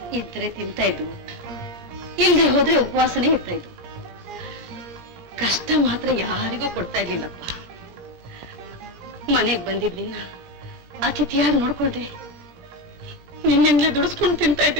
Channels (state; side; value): late; left; 17 ms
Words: ಇದ್ರೆ ತಿಂತಾ ಇದ್ವು, ಇಲ್ಲದೆ ಹೋದ್ರೆ ಉಪವಾಸನೇ ಇರ್ತಾ ಇದ್ವು. ಕಷ್ಟ ಮಾತ್ರ ಯಾರಿಗೂ ಕೊಡ್ತಾ ಇರ್ಲಿಲ್ಲಪ್ಪ. ಮನೆಗ್ ಬಂದಿದ್ವಿ, ಅತಿಥಿಯಾಗಿ ನೋಡ್ಕೊಳ್ದೆ ನಿನ್ನಿಂದಲೇ ದುಡಿಸ್ಕೊಂಡು ತಿಂತಾ